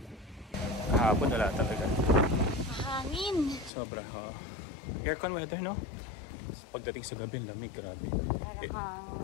Kahapon wala talaga. Mahangin. Sobra, aircon weather, no? Pagdating sa gabi, lamig, grabe.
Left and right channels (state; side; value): drops out; right; at 3.7 s